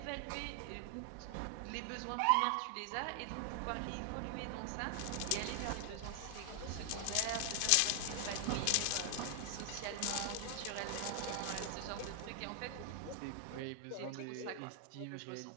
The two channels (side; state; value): both; different; correlation 0.00